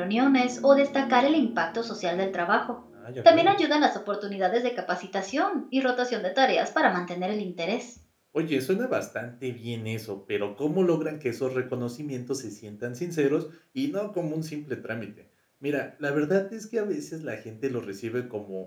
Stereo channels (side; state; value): both; identical; correlation 1.00